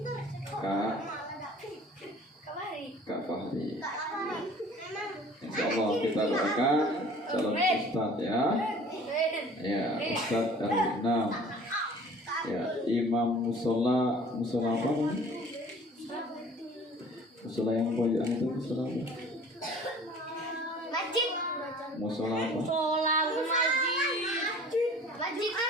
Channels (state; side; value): normal; both; correlation 0.48